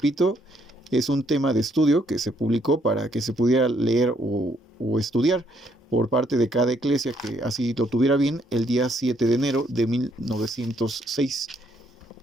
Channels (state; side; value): normal; both; correlation 0.71